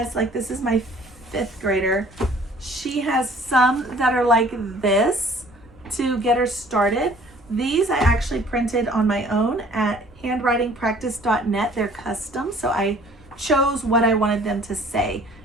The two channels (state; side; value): normal; both; correlation 0.54